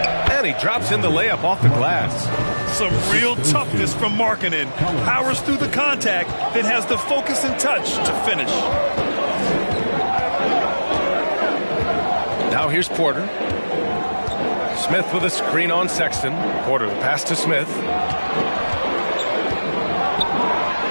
And he drops in the layup off the glass. Some real toughness from Markkanen. Powers through the contact, then has the focus and touch to finish. Now here's Porter. Smith with a screen on Sexton. Porter the pass to Smith.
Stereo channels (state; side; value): inverted; both; correlation -1.00